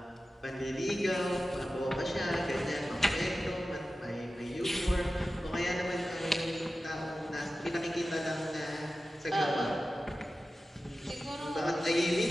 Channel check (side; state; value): both; normal; correlation 0.94